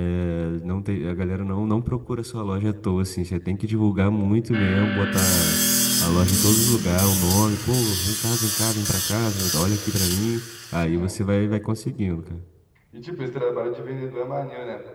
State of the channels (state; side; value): identical; both; correlation 1.00